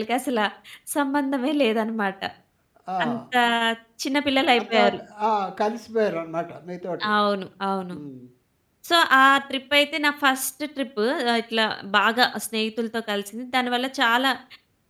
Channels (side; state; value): both; identical; correlation 1.00